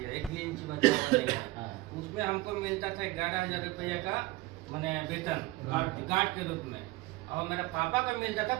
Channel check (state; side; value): quieter; left; 19.1 dB